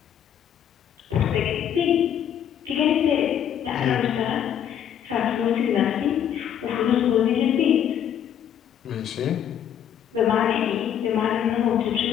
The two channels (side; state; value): right; quieter; 9.5 dB